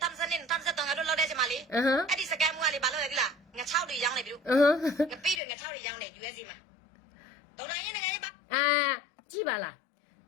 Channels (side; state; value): right; drops out; at 5.4 s